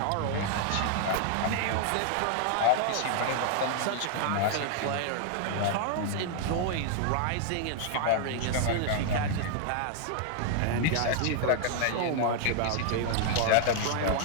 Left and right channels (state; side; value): different; both; correlation 0.00